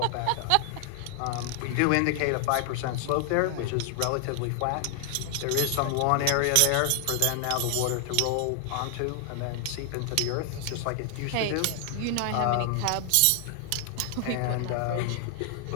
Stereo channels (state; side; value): different; both; correlation 0.00